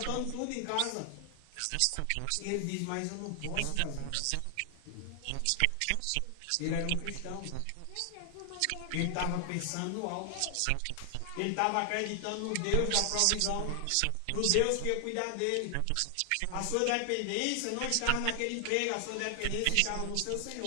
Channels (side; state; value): both; different; correlation 0.00